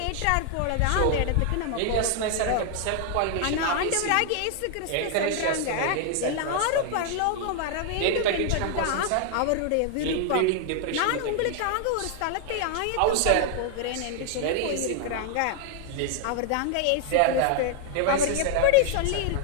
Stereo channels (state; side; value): different; both; correlation 0.00